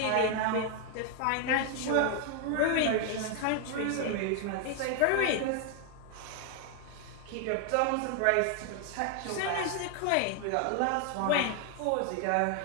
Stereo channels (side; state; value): both; different; correlation 0.00